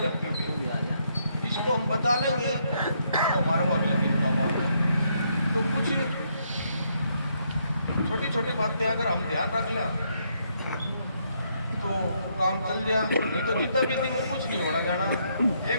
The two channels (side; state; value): both; inverted; correlation -0.74